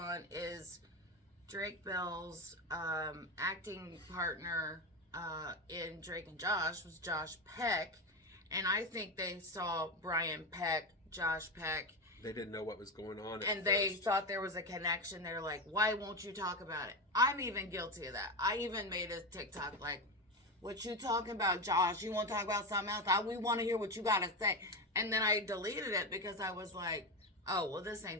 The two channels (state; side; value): normal; both; correlation 0.17